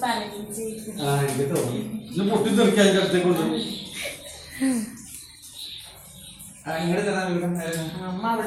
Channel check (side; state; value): both; identical; correlation 1.00